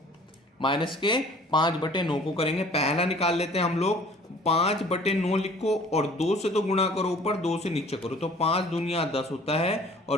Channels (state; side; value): normal; both; correlation 0.51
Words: माइनस के 5/9 को करेंगे। पहला निकाल लेते हैं हम लोग। 5/9 लिखो और 2 से तो गुणा करो ऊपर, 2 से नीचे करो, तो 5 दूनिया 10 होता है